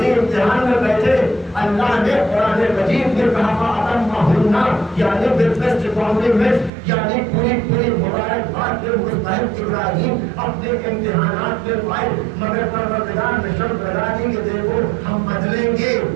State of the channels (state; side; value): drops out; left; at 6.7 s